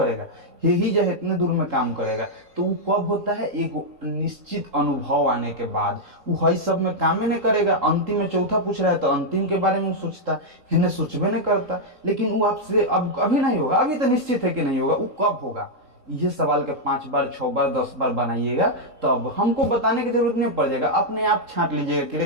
हे ही जो इतने दूर में काम करेगा। तो वो कब होता है, एक निश्चित अनुभव आने के बाद। वो हई सब में काम नहीं करेगा, अंतिम में चौथा पूछ रहा है तो अंतिम के बारे में वो सोचता, हेरने सोचबे नहीं करता। लेकिन वो आपसे अब अभी नहीं होगा, अभी तो निश्चित है कि नहीं होगा, वो कब होगा। ये सवाल के 5 बार 6 बार 10 बार बनाइएगा, तो अब हमको बताने की जरूरत नहीं पड़ जाएगा, अपने आप छांट लीजिएगा कि रे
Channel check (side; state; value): left; late; 3.8 ms